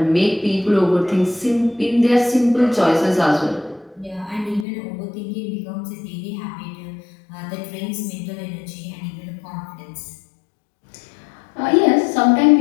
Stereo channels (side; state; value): right; drops out; at 4.7 s